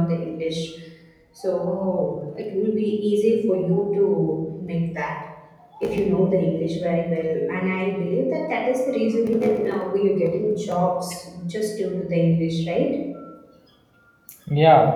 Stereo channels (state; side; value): identical; both; correlation 1.00